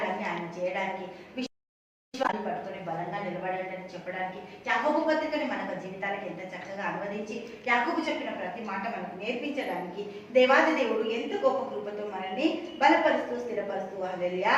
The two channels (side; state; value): both; identical; correlation 1.00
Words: ఆయన చేయడానికి పట్టుకుని బలంగా నిలబడాలని చెప్పడానికి యాకోబు పత్రికని మన జీవితాలకు ఎంత చక్కగా అనువదించి యాకోబు చెప్పిన ప్రతి మాట మనకు నేర్పించడానికి దేవాది దేవుడు ఎంత గొప్ప కృపతో మనల్ని బలపరుస్తూ స్థిరపరుస్తూ హల్లెలూయా